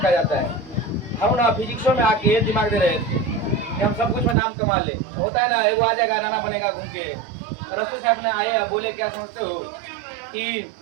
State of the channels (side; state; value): left; drops out; at 4.4 s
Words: कहा जाता है। हम ना फिजिक्सों में आके दिमाग दे रहे थे कि हम सब कुछ में नाम कमा ले, होता है ना, एगो आ जाएगा नाना बनेगा घूम के। अरस्तु साहब ने आए, अब बोले क्या समझते हो कि